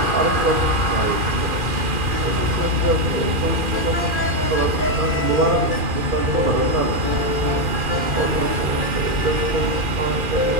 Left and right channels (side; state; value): left; late; 2.4 ms